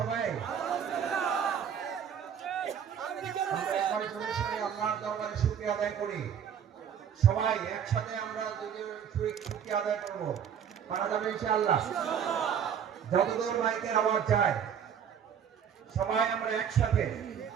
আমরা একবার জোরে সোরে আল্লাহর দরবারে শুকরিয়া আদায় করি। সবাই একসাথে আমরা শুকরিয়া আদায় করব। পারা যাবে ইনশাআল্লাহ। যতদূর মাইকের আওয়াজ যায় সবাই আমরা একসাথে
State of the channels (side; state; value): left; quieter; 8.2 dB